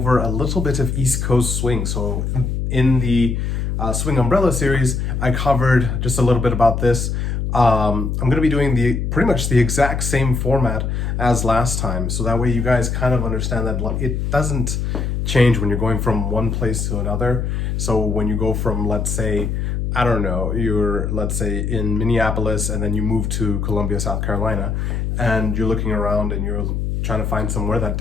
a little bit of East Coast swing. So in the Swing Umbrella series, I covered just a little bit about this. I'm going to be doing pretty much the exact same format as last time. So that way you guys kind of understand that it doesn't change when you're going from one place to another. So when you go from, let's say, I don't know, let's say in Minneapolis and then you move to Columbia, South Carolina, and you're looking around and you're trying to find somewhere that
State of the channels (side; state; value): left; noise; hum, 1 dB below the sound